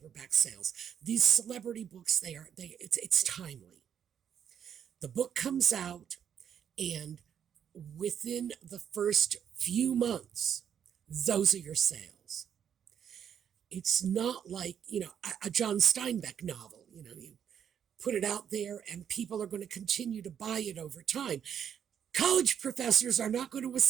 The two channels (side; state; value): left; quieter; 8.6 dB